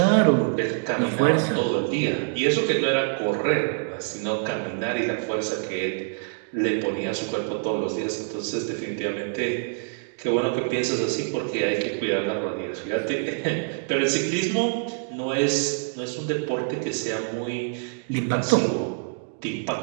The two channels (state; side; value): silent; left; digital silence